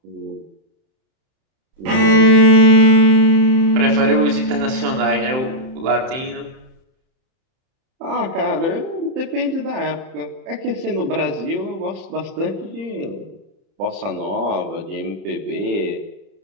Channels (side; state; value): left; late; 31 ms